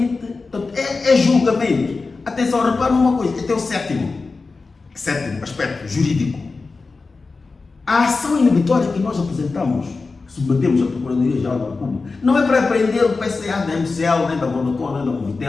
portanto, é julgamento. Atenção, repara numa coisa, este é o sétimo aspecto jurídico. A ação inibitória que nós apresentamos, submetemos à Procuradoria-Geral da República, não é para prender o PCA da MCL, nem da Vodacom, nem da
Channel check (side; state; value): right; quieter; 4.0 dB